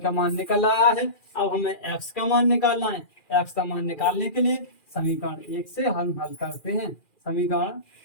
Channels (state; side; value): late; right; 2.4 ms